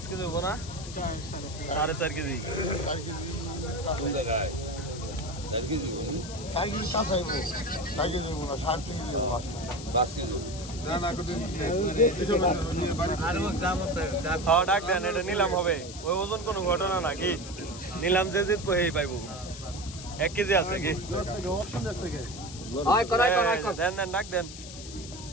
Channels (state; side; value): noise; left; hiss, 13 dB below the sound